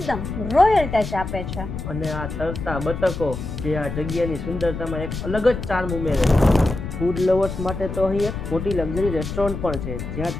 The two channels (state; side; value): noise; left; rumble, 6 dB below the sound